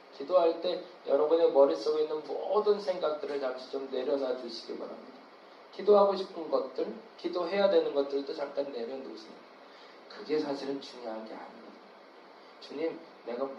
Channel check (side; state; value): both; identical; correlation 1.00